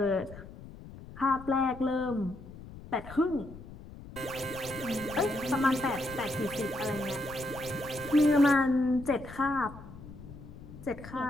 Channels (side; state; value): left; noise; rumble, 15 dB below the sound